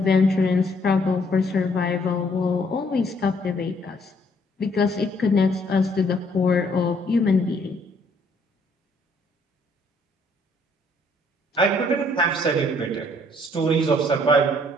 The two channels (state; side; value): normal; both; correlation 0.65